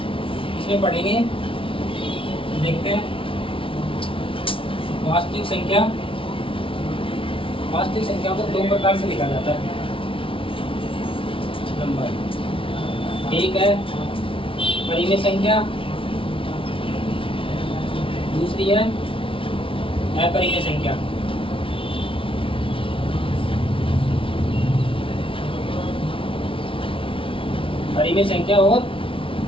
इसमें पढ़ेंगे, देखते हैं वास्तविक संख्या वास्तविक संख्या को दो प्रकार से लिखा जाता है नंबर। एक है परिमेय संख्या, दूसरी है अपरिमेय संख्या। परिमेय संख्या और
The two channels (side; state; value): right; late; 0.25 ms